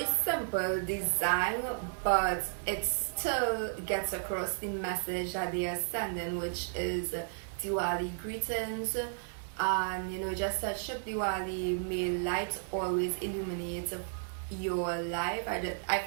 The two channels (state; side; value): silent; left; digital silence